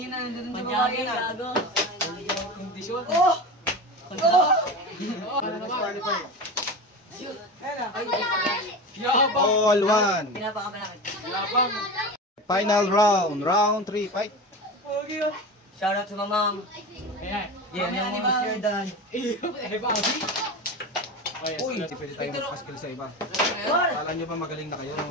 nandun sa babae na. Gago. Kondisyon. Oh! Ano naman? Yabang! All 1. Pinapakamalaki. Yabang. Final round, round 3, fight. Shoutout sa mamang. Ayan. Yeah, yung mga Sir Dan. Eh, babi. Uy, hindi pwede tayo magpaskil sa iba. Kala nyo ba magaling na kayo?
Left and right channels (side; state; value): both; normal; correlation 0.27